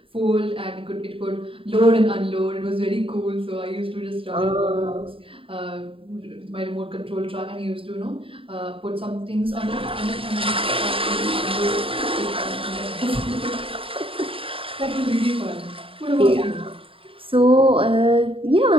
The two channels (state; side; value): late; left; 0.26 ms